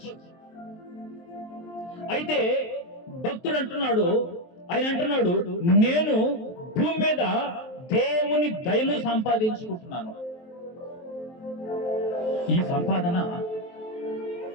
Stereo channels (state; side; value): late; right; 23 ms